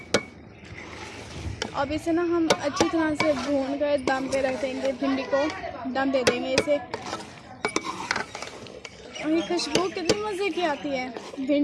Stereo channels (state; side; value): identical; both; correlation 1.00